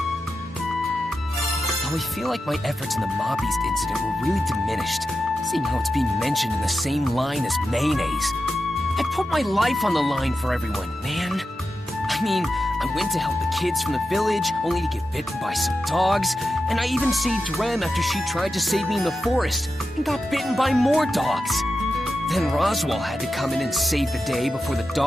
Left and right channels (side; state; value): both; normal; correlation 0.90